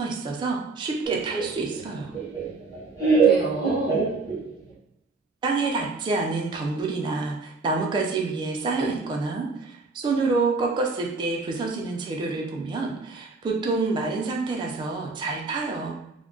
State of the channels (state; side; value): quieter; left; 3.7 dB